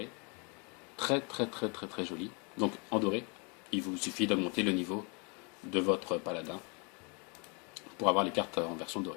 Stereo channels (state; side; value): quieter; right; 33.5 dB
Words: Très jolie. Donc en doré, il vous suffit d'augmenter le niveau de votre paladin pour avoir les cartes en version